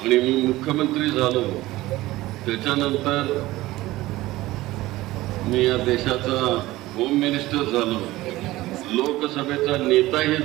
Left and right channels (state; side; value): quieter; left; 17.7 dB